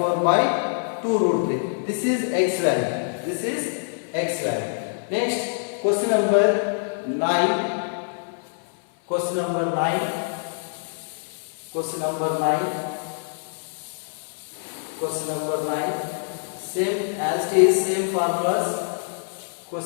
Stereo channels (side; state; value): right; silent; 62 dB below the other